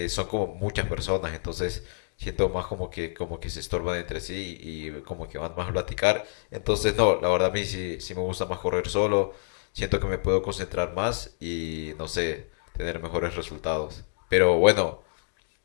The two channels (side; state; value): right; silent; 60 dB below the other